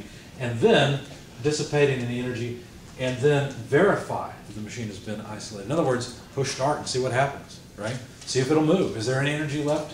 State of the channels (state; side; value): identical; both; correlation 1.00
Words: and then dissipating any energy, and then verify that the machine has been isolated. In other words, push start and see what happens, right? See if it'll move. Is there any energy